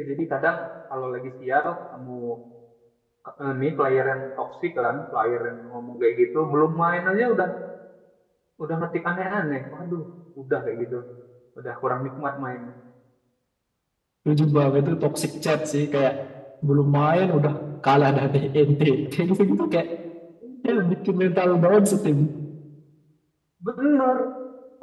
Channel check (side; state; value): both; identical; correlation 1.00